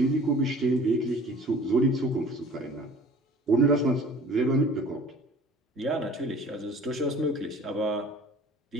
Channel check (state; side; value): normal; both; correlation 0.47